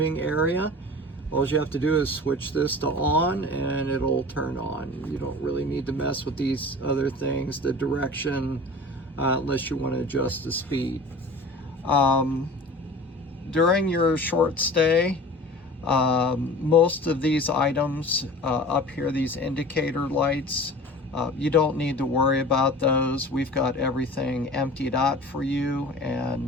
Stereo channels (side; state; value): both; normal; correlation 0.39